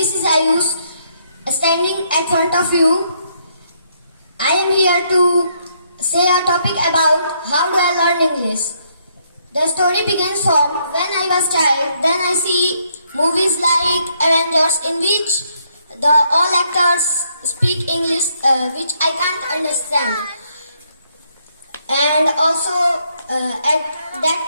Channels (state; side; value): inverted; both; correlation -0.73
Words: is Ayush standing at front of you. I am here to say a topic about how do I learn English. The story begins from when I was child. Then I see movies like Avengers in which the all actors speak English, which I can't understand. And also at that